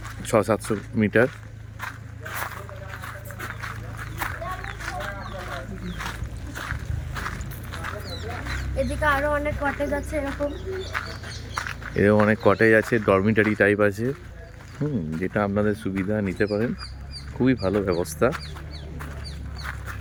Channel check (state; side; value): identical; both; correlation 1.00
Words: 600-700 মিটার। এদিকে আরো অনেক কটেজ আছে এরকম অনেক কটেজ আছে, ডরমিটারি টাইপ আছে, যেটা আপনাদের সুবিধা নিতে পারেন, খুবই ভালো ব্যবস্থা।